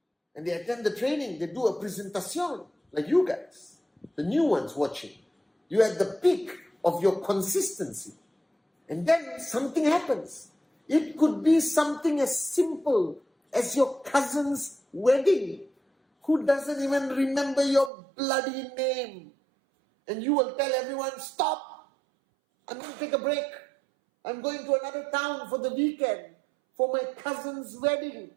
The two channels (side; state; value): left; drops out; at 17.9 s